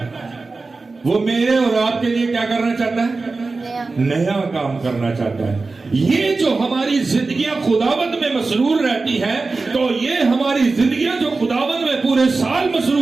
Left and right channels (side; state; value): left; quieter; 3.8 dB